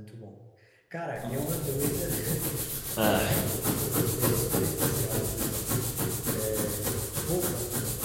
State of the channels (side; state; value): both; identical; correlation 1.00